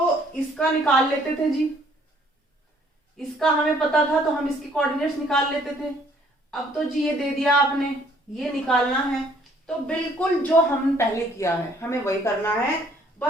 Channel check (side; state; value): both; normal; correlation 0.62